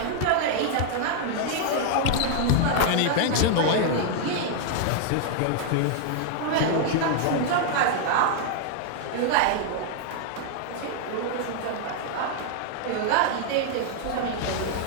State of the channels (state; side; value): different; both; correlation -0.01